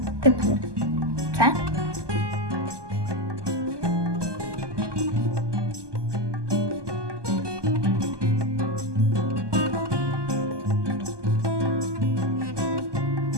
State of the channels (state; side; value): late; left; 1.2 ms